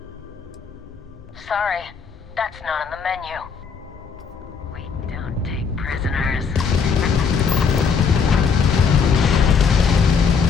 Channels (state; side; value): quieter; right; 5.9 dB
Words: Sorry, that's not on the menu. We don't take prisoners.